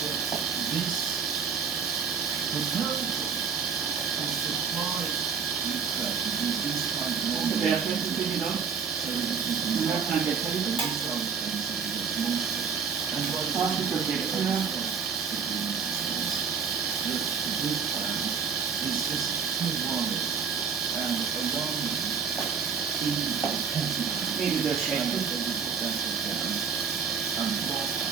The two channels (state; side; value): quieter; left; 6.2 dB